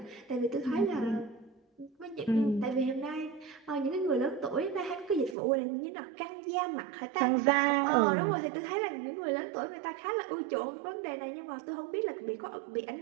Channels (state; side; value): drops out; left; at 5.4 s